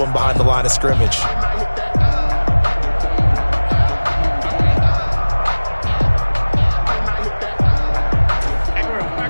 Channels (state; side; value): inverted; both; correlation -1.00